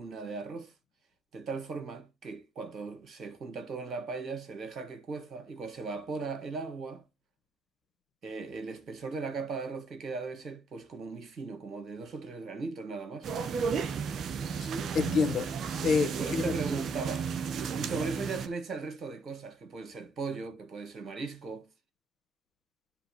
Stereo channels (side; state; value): both; normal; correlation 0.70